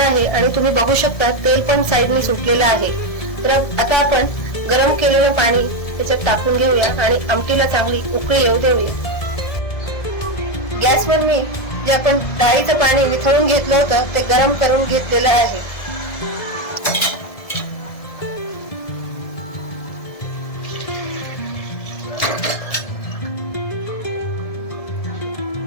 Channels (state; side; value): late; right; 1.7 ms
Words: आणि तुम्ही बघू शकता तेल पण साईडने सुटलेलं आहे. तर आता आपण गरम केलेलं पाणी त्याच्यात टाकून घेऊया आणि आमटीला चांगली उकळी येऊ देऊया. गॅसवर मी जे आपण डाळीचं पाणी वितळून घेतलं होतं ते गरम करून घेतलेलं आहे.